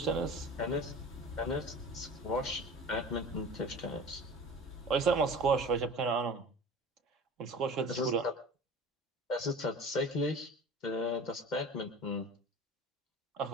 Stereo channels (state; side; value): normal; both; correlation 0.38